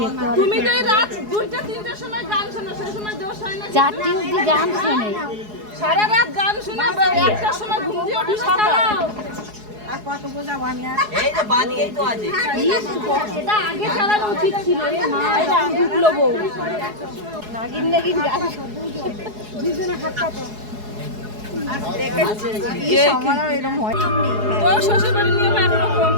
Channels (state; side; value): late; left; 4.8 ms